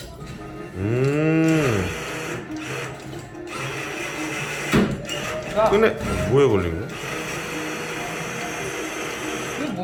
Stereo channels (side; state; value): both; identical; correlation 1.00